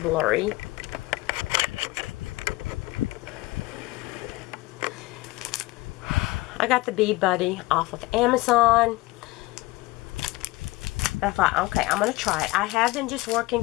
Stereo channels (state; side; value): quieter; right; 20.9 dB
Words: blurry. I got the Bead Buddy off of Amazon. I thought, okay, I'm going to try it. I have been just working